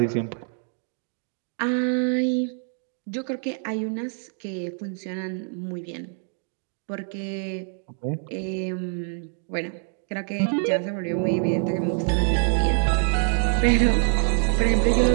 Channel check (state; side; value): silent; left; 56 dB below the other